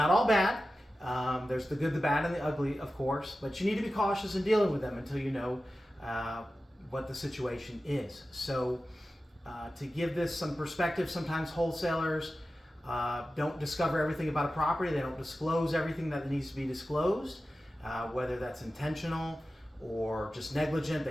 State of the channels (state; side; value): normal; both; correlation 0.94